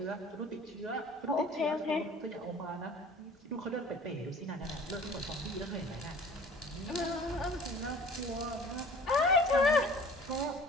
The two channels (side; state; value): both; normal; correlation 0.46